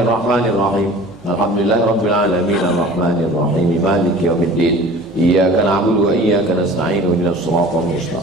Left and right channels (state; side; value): normal; both; correlation 0.43